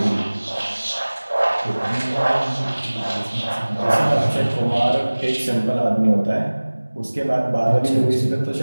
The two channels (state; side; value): inverted; both; correlation -1.00